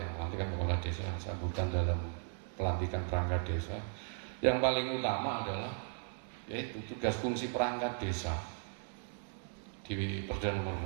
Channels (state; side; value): silent; left; 53 dB below the other